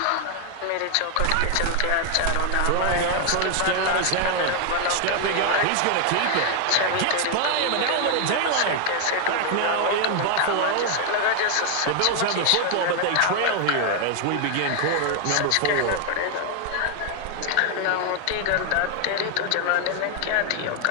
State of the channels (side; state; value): both; different; correlation 0.00